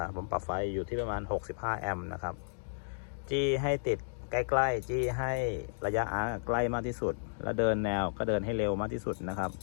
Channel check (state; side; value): silent; right; digital silence